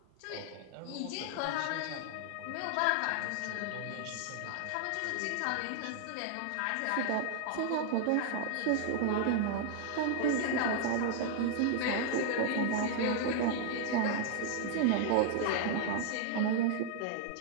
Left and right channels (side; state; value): both; different; correlation -0.01